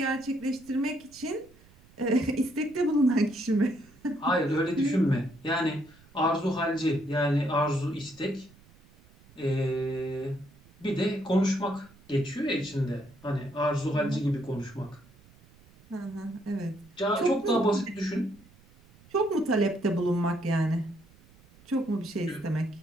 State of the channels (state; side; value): noise; right; rumble, 26 dB below the sound